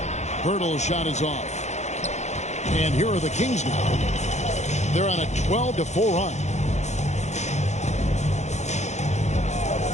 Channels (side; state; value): right; late; 0.33 ms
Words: Birtle's shot is off. And here are the Kings now. They're on a 12-4 run.